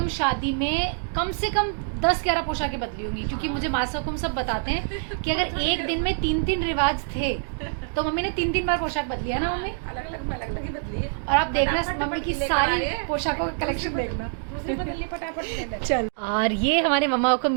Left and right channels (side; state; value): left; silent; digital silence